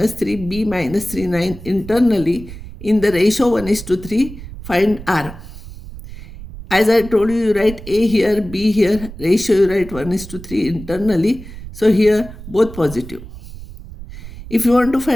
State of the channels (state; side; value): noise; right; rumble, 14 dB below the sound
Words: 3, B minus 3, 9 internally in the ratio 1:3, find R. As I told you, you write A here, B here, ratio you write 1:3 internally. So here both positive. If you want to